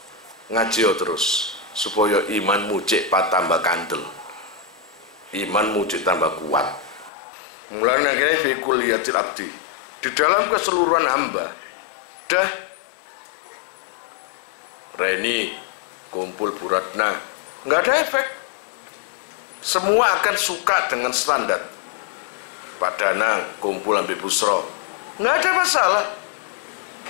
ngaji terus supaya imanmu cek tambah kandel, imanmu cek tambah kuat. Mulane akhirnya fi kulliyatil abdi, di dalam keseluruhan hamba, dah Reni kumpul Buratna, nggak ada efek. Semua akan suka dengan standar. Pak Danang kumpul ambil Busro, nggak ada masalah.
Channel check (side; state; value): right; drops out; at 7.1 s